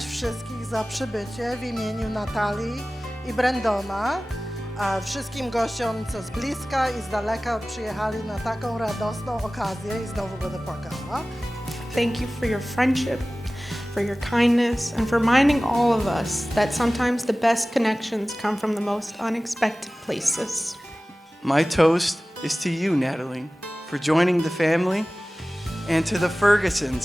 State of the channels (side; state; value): both; normal; correlation 0.97